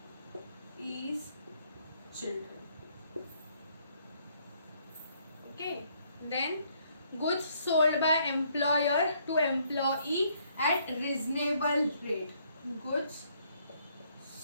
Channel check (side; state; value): both; inverted; correlation -0.68